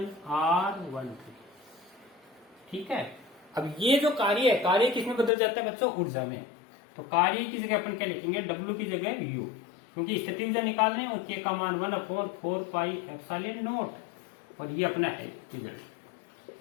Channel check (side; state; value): right; drops out; at 5.3 s